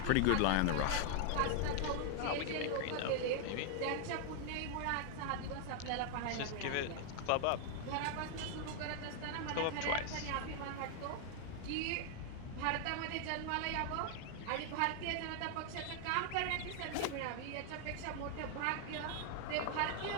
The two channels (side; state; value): both; different; correlation 0.00